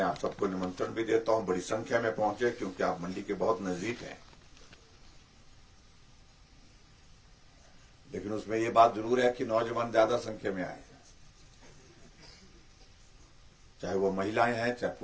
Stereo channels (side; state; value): both; identical; correlation 1.00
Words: आप सबको निमंत्रण भी देता हूं। बड़ी संख्या में पहुंचे, क्योंकि आप मंडी के बहुत नजदीक हैं। लेकिन उसमें ये बात जरूर है कि नौजवान ज्यादा संख्या में आए, चाहे वो महिलाएं हैं चाहे